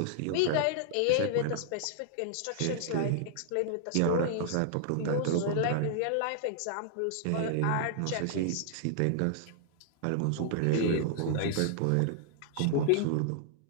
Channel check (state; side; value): different; both; correlation -0.01